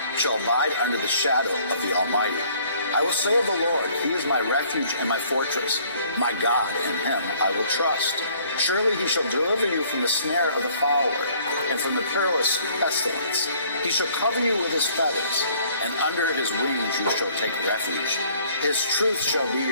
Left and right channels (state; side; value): inverted; both; correlation -0.59